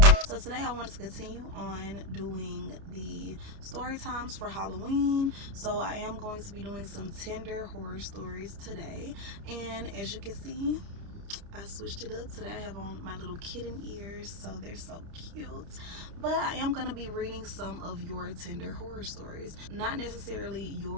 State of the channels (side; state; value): left; late; 30 ms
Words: So today I wanted to continue on doing the story times for Halloween. So I am going to be doing some Tinder horror stories today. And as you can see, I switched it up. Today I have on my little kitten ears, so they're so cute. But I am going to be reading some of your Tinder horror stories. Not necessarily